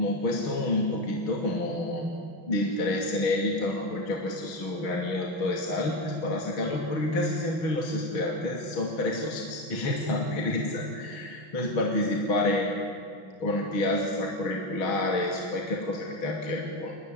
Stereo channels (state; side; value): late; right; 6.3 ms